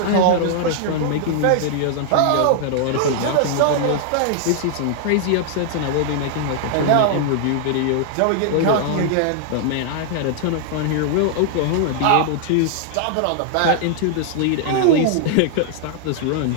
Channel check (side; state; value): both; different; correlation -0.01